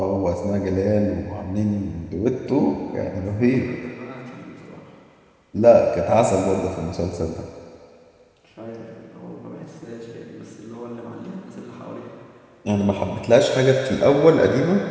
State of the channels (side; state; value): both; identical; correlation 1.00